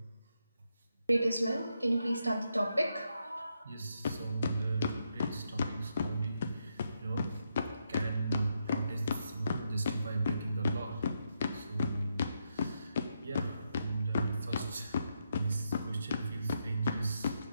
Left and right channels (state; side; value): inverted; both; correlation -0.81